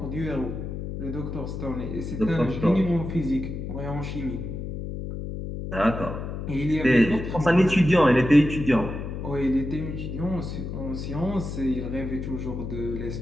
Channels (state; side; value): noise; left; hum, 6 dB below the sound